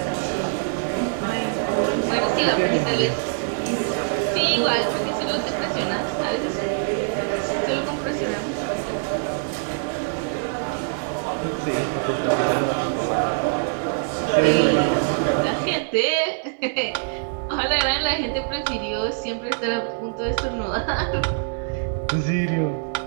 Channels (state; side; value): silent; left; 59 dB below the other